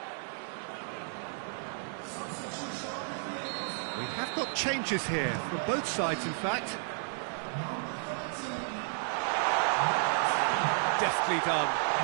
We have got changes here, from both sides in fact. Deftly done.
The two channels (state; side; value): silent; left; 56 dB below the other